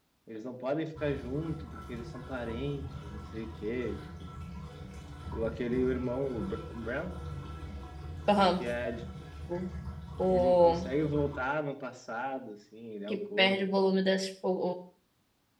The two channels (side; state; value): both; identical; correlation 1.00